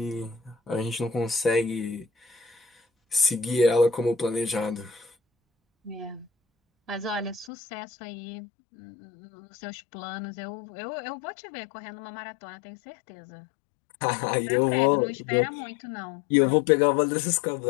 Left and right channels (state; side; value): drops out; right; at 7.5 s